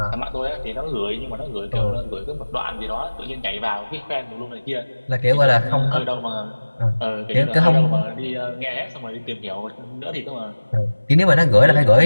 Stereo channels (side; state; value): both; inverted; correlation -1.00